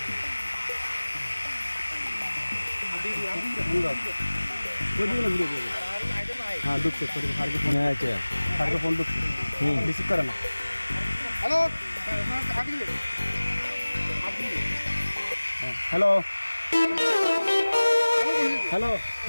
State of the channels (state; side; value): inverted; both; correlation -1.00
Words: হ্যাঁ দুঃখ ফারুকের ফোন আচ্ছা ফারুকের ফোন দুঃখ রিসিভ করে না। হ্যালো হ্যালো হ্যালো